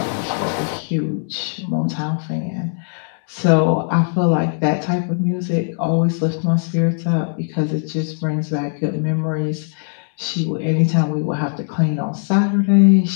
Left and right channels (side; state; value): right; silent; digital silence